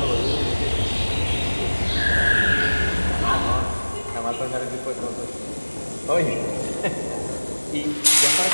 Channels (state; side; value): inverted; both; correlation -1.00